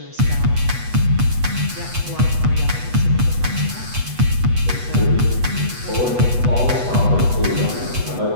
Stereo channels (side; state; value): left; late; 8.2 ms